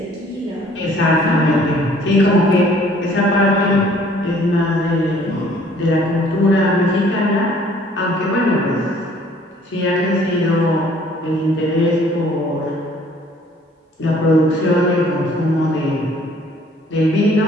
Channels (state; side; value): normal; both; correlation 0.57